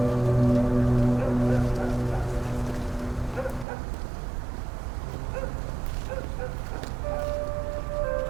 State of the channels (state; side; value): drops out; left; at 3.7 s